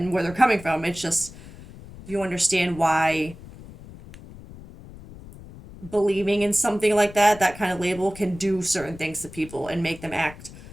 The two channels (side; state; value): left; noise; rumble, 17 dB below the sound